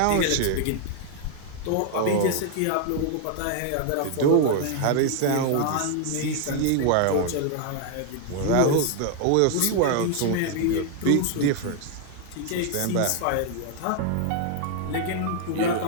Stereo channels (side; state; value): both; different; correlation 0.00